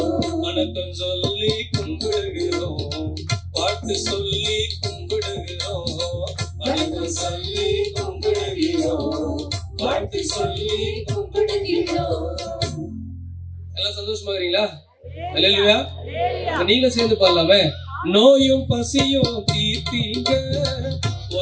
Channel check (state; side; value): identical; both; correlation 1.00